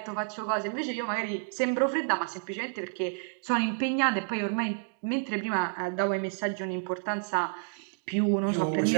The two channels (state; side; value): silent; left; 58 dB below the other